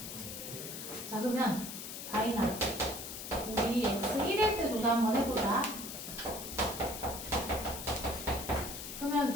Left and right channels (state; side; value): noise; left; hiss, 8 dB below the sound